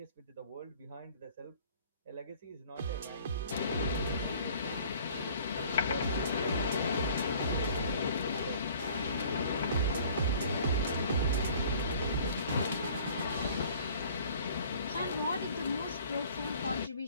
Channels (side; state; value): both; inverted; correlation -0.52